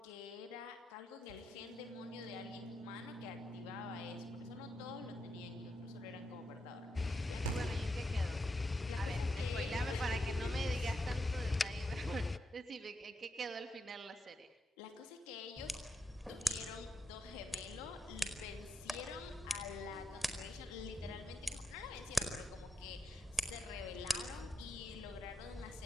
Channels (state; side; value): normal; both; correlation 0.84